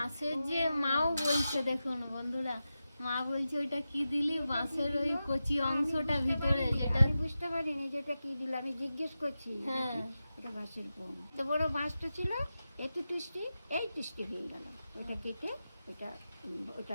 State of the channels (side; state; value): both; inverted; correlation -0.92